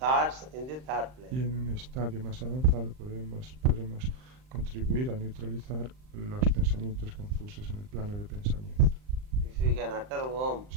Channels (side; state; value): left; late; 39 ms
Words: in the thought Y plane. en un estadio más avanzado podremos contribuir a neutralizar los pensamientos confusos en el plano de pensamiento. If you can utter Om